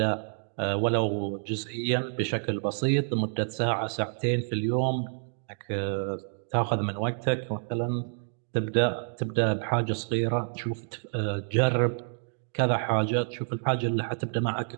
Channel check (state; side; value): silent; left; digital silence